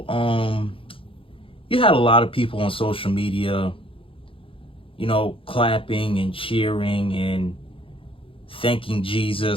You had a lot of people on social media, clapping and cheering and thanking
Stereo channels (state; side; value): late; right; 0.26 ms